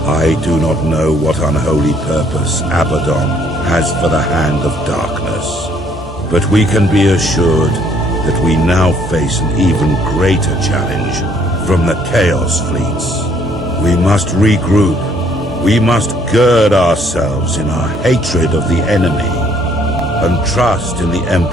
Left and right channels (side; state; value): both; normal; correlation 0.64